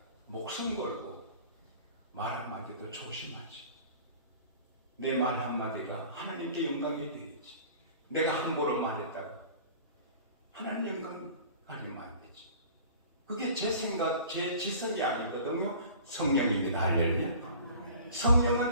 목숨 걸고 말 한마디도 조심하지. 내 말 한마디가 하나님께 영광이 되겠지. 내가 함부로 말했다가 하나님 영광 가리면 안 되지. 그게 제 생각, 제 지성이 아니거든요. 성령입니다. 할렐루야.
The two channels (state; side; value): inverted; both; correlation -0.44